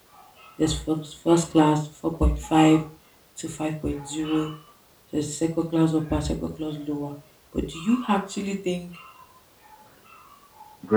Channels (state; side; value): identical; both; correlation 1.00